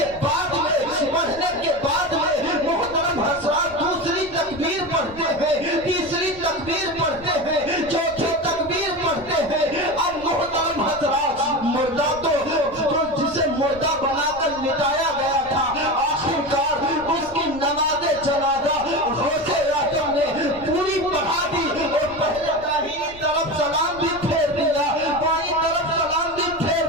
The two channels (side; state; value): left; noise; rumble, 20 dB below the sound